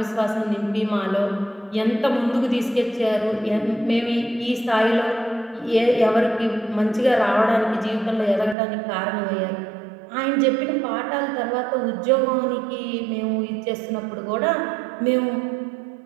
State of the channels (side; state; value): left; drops out; at 8.6 s